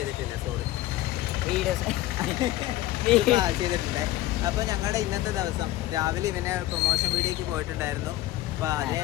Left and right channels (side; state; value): right; quieter; 15.4 dB